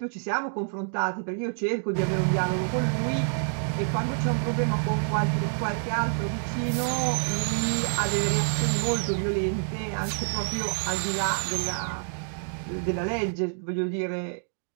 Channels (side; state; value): left; silent; 60 dB below the other